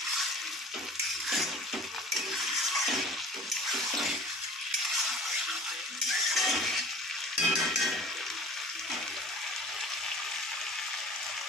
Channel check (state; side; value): normal; both; correlation 0.44